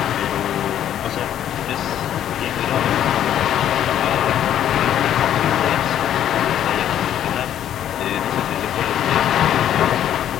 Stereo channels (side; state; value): right; quieter; 10.7 dB